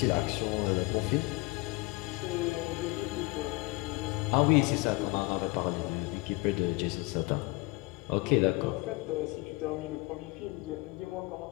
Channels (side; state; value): right; quieter; 24.1 dB